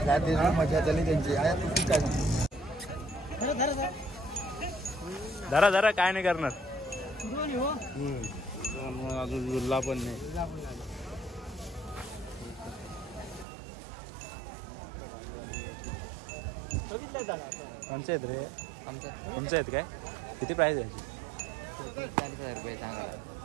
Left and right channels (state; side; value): drops out; left; at 13.5 s